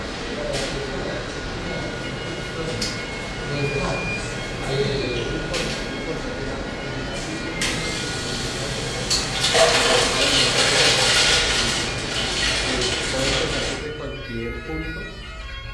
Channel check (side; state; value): both; identical; correlation 1.00